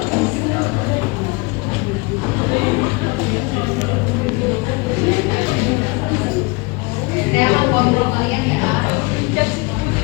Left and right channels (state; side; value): quieter; right; 27.3 dB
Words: Saya akan kontrol kalian ya.